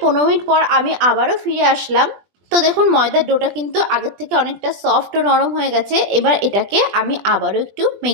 15 মিনিট পর আমি আবারও ফিরে আসলাম। তো দেখুন ময়দার ডোটা কিন্তু আগের থেকে অনেকটা সফট ও নরম হয়ে গেছে। এবার এটাকে আমি আবারও একটু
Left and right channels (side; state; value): left; late; 20 ms